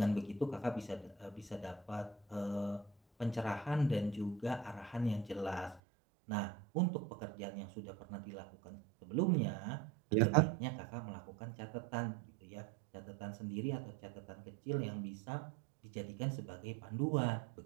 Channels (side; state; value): left; drops out; at 5.8 s